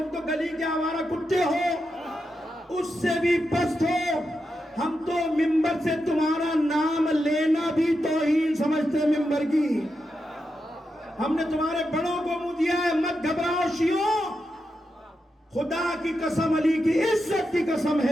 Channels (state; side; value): normal; both; correlation 0.87